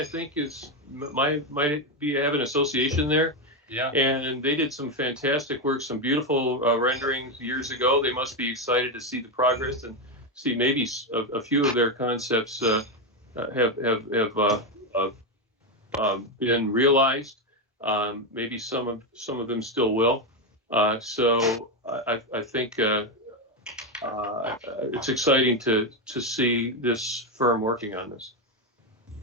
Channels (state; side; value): normal; both; correlation 0.08